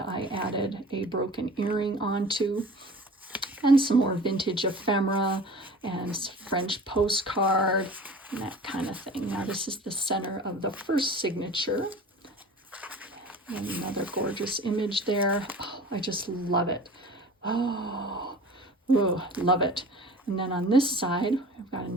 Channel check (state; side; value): normal; both; correlation 0.41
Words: I added a broken earring onto, and some more vintage ephemera and French postcard and that kind of thing. Now this is the center of the first signature. And another gorgeous image there. Oh, I just love it. Oh, ooh, love it. And then on this side, I've got